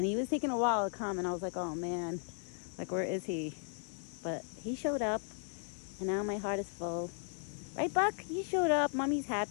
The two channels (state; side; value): silent; right; 54 dB below the other